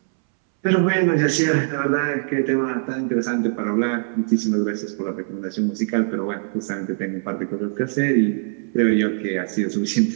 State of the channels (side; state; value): left; silent; 64 dB below the other